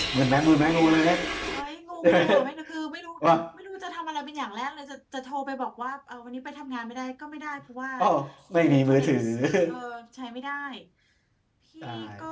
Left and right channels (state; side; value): identical; both; correlation 1.00